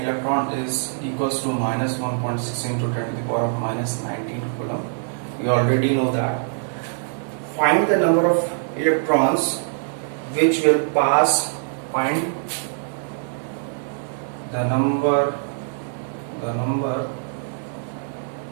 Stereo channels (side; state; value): left; silent; 63 dB below the other